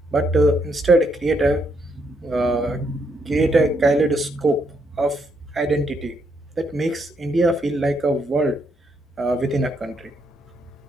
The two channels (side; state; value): both; normal; correlation 0.76